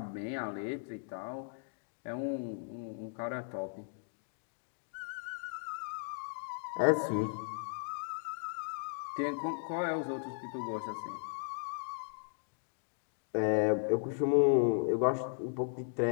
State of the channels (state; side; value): silent; right; digital silence